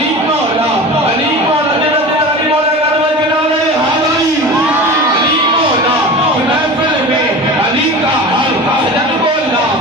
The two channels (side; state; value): both; normal; correlation 0.33